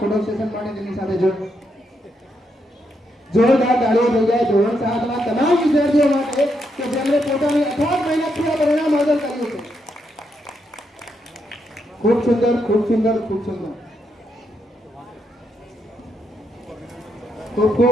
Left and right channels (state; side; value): normal; both; correlation 0.80